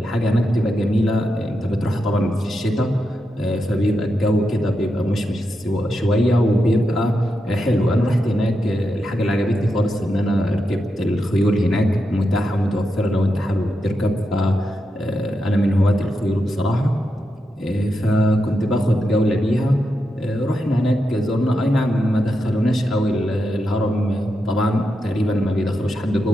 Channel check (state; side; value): normal; both; correlation 0.86